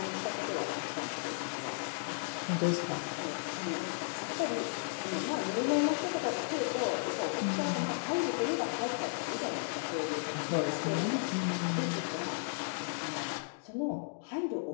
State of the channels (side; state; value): right; silent; digital silence